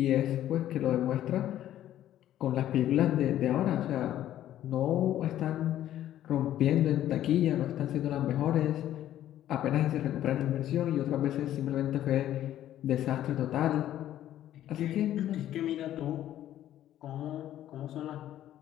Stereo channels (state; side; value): quieter; right; 12.3 dB